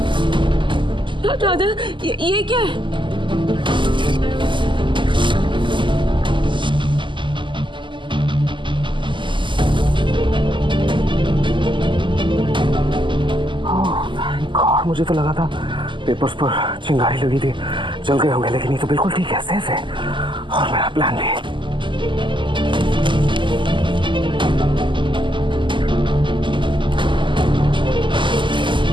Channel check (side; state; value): left; late; 0.24 ms